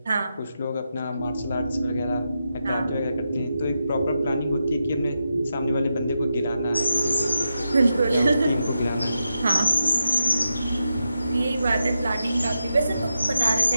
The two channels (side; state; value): both; inverted; correlation -0.87